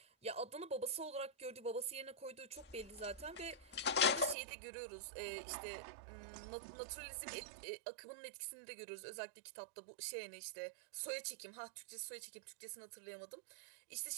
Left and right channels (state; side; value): drops out; left; at 4.4 s